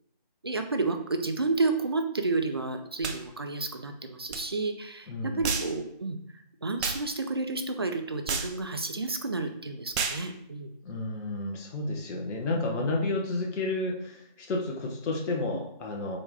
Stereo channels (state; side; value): inverted; both; correlation -0.46